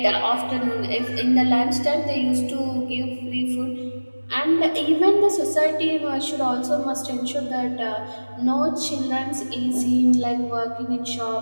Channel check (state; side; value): inverted; both; correlation -1.00